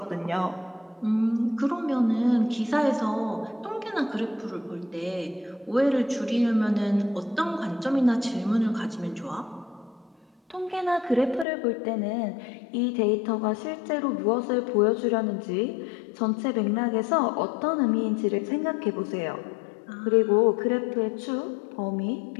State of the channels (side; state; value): right; drops out; at 11.5 s